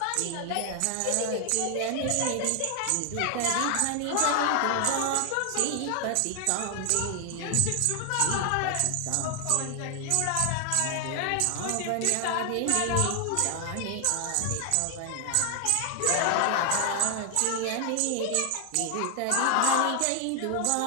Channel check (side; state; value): both; different; correlation 0.00